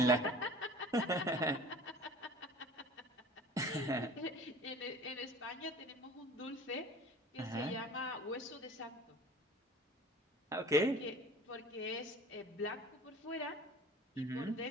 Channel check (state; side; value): normal; both; correlation 0.43